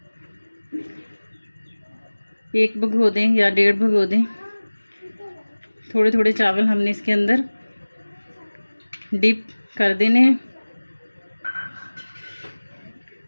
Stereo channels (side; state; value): both; inverted; correlation -1.00